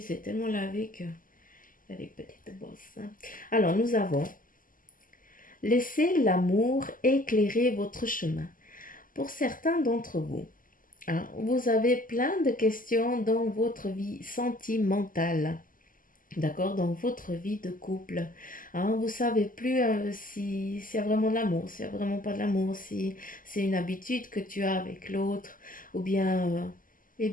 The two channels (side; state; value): right; late; 0.40 ms